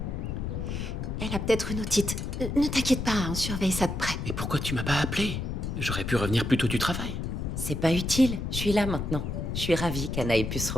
Elle a peut-être une otite. Ne t'inquiète pas, on surveille ça de près. Mais pourquoi tu m'as pas appelé? J'aurais pu revenir plus tôt du travail. C'est pas utile. Je suis là maintenant. Je suis ravie qu'Anna ait pu se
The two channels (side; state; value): left; noise; rumble, 3 dB below the sound